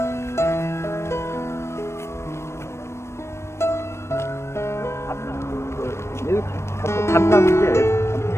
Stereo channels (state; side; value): late; right; 0.13 ms